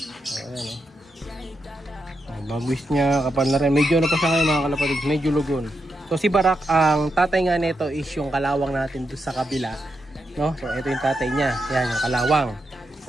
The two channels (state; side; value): normal; both; correlation 0.85